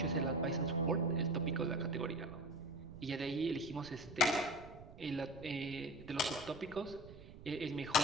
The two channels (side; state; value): right; noise; rumble, 16 dB below the sound